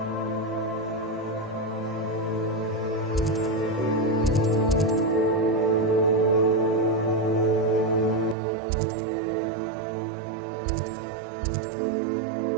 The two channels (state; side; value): drops out; left; at 8.3 s